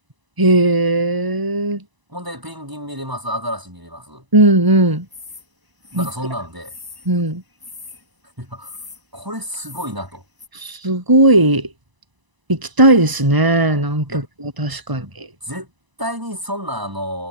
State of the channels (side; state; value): left; late; 1.0 ms